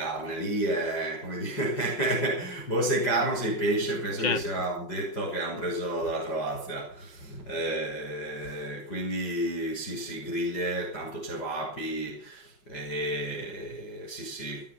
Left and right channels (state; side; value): late; right; 5.4 ms